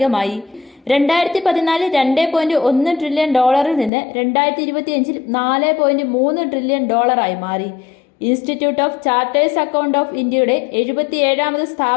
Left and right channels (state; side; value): drops out; right; at 3.9 s